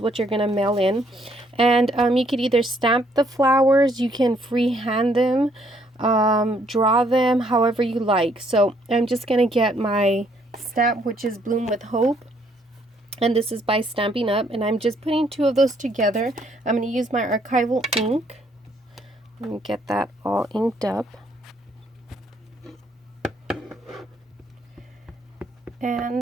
what you're going to mail in. And you could either stamp the flowers, you can freehand them, draw them however you like. So I'm just going to get my stamp, which is Bloom with Hope. And this is by Stampin' Up. And I'm just putting 2 of those together. I'm going to use my archival ink. Let me get that all inked up.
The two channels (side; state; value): both; normal; correlation 0.68